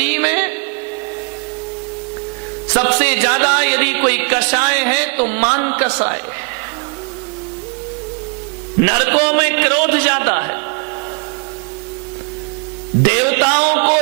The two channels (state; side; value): quieter; left; 36.8 dB